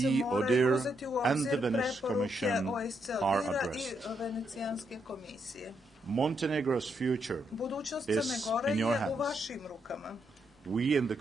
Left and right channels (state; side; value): normal; both; correlation 0.79